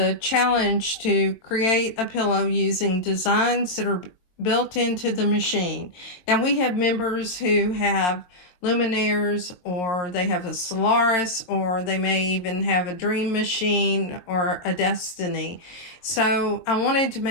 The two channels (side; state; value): right; late; 22 ms